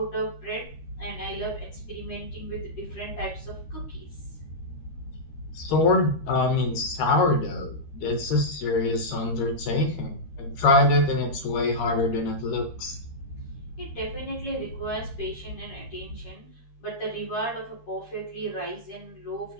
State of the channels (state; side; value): late; right; 13 ms